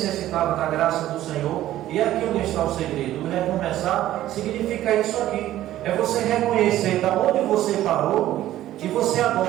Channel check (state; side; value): quieter; left; 13.7 dB